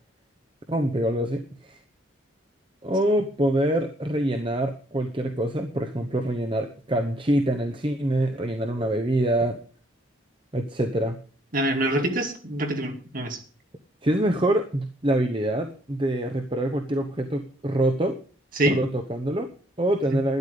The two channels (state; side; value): normal; both; correlation 0.66